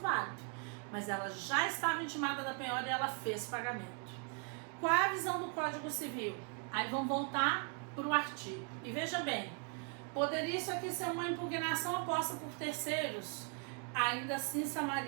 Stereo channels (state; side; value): quieter; left; 37.6 dB